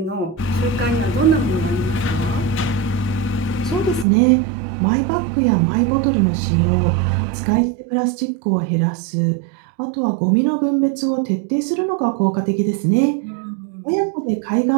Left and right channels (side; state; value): left; drops out; at 4.0 s